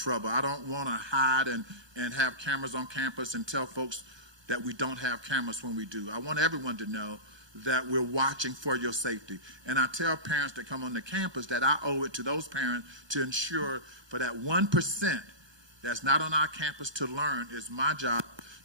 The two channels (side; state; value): left; late; 1.2 ms